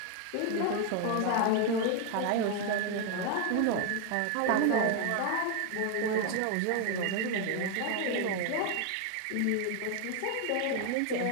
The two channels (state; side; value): different; both; correlation 0.01